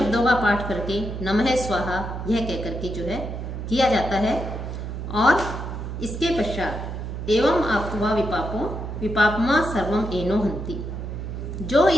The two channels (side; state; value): right; noise; hum, 6 dB below the sound